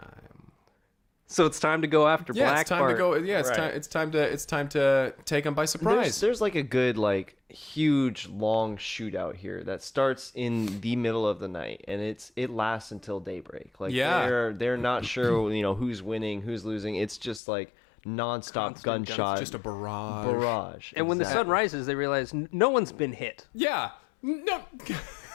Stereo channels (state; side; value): drops out; right; at 17.4 s